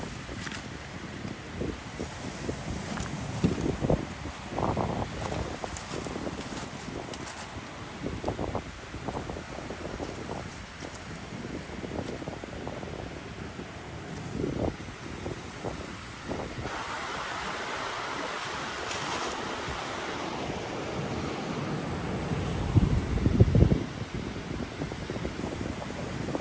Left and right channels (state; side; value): identical; both; correlation 1.00